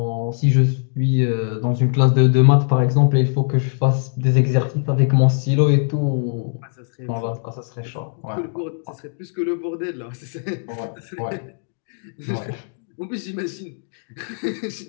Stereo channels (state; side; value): silent; right; digital silence